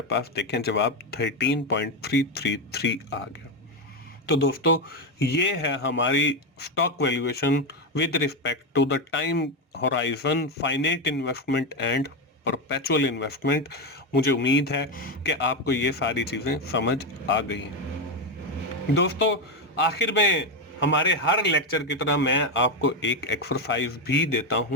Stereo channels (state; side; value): normal; both; correlation 0.11